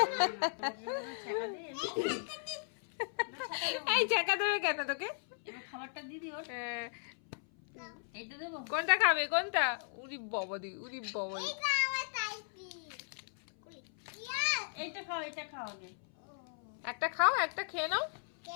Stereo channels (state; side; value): silent; right; 54 dB below the other